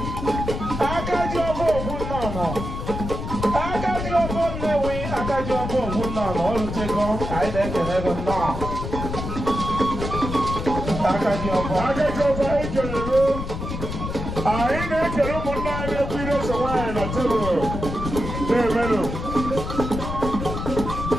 akaji ọbụ ogwu nnọọ akaji ọbụ Nnewi akaji ọbụ ogwu nnọọ olutego anyị na-ekele gị nnọọ akaji ọbụ anyị na-ekele ụmụnne anyị na-ekwu ire so nwaanyị na tebụl na-emenụ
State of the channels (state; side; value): noise; left; rumble, 5 dB below the sound